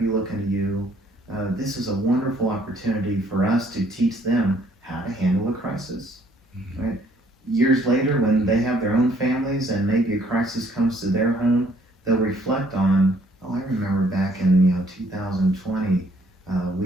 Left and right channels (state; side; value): normal; both; correlation 0.63